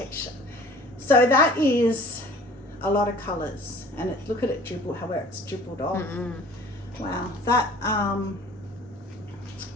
So that is a lot of colours, and look at it dribble, how it's dribbled off. Wow, that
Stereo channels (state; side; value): normal; both; correlation 0.48